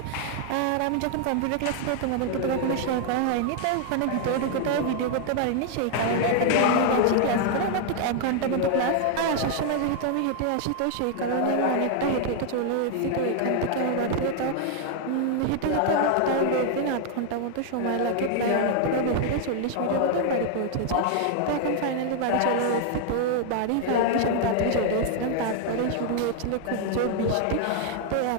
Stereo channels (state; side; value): different; both; correlation 0.00